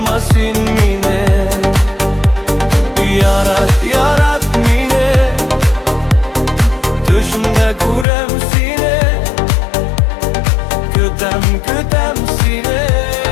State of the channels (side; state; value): right; drops out; at 8.1 s